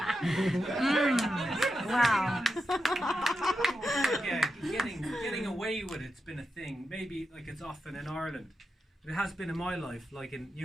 Wow. Yeah, getting away with it's been a thing. Maybe like it's often in Ireland. It has been in my life. Like in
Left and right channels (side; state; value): both; normal; correlation 0.88